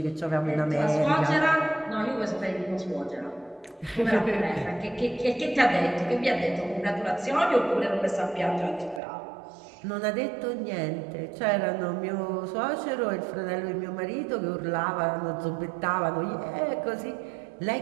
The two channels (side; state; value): left; drops out; at 9.0 s